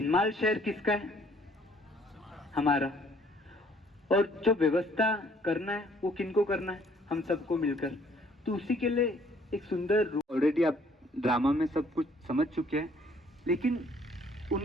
शहर किसका है? हमारा। और जो व्यवस्था करना है वो किनको करना है? हम सबको मिलकर। तो उसी के लिए एक सुंदर, ऑलरेडी आप ड्रामा में सब कुछ समझ चुके हैं, लेकिन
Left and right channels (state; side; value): normal; both; correlation 0.61